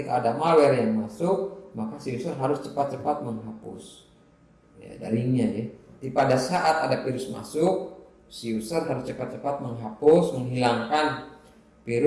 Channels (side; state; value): both; identical; correlation 1.00